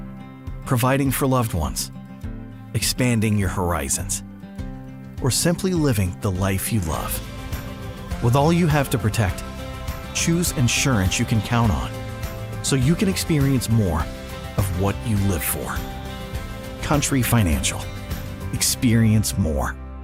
Providing for loved ones, expanding your horizons, or simply living the life you love. With all you have to protect, choose insurance you can count on so you can experience more of what you live for. Country Financial. Experience more.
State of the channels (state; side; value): identical; both; correlation 1.00